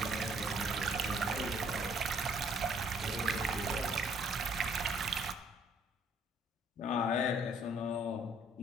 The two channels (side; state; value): both; normal; correlation 0.63